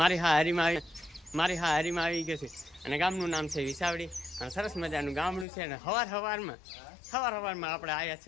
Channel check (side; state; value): right; drops out; at 5.5 s